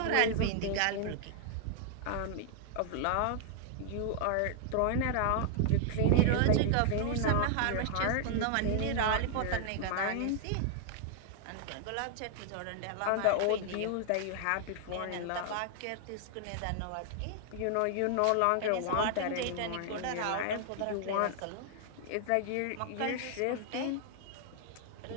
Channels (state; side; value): different; both; correlation 0.00